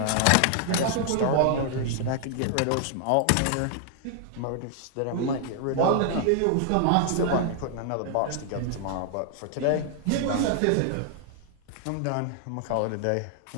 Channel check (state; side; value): different; both; correlation 0.00